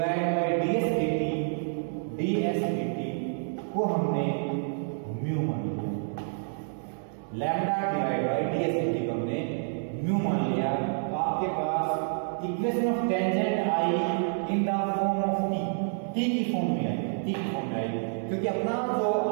by ds dt को हमने म्यू मान लिया, lambda divide by ds dt को हमने म्यू मान लिया। तो आपके पास इक्वेशन ऑफ टेंजेंट आई in the form of t की फॉर्म में आई, क्योंकि अपना जो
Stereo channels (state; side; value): silent; left; digital silence